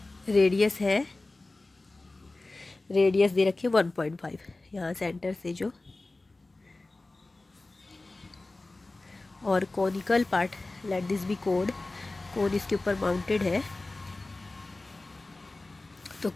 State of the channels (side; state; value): right; quieter; 3.1 dB